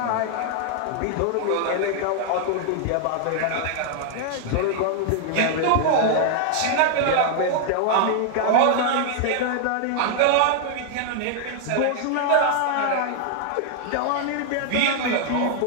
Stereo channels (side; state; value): both; different; correlation 0.00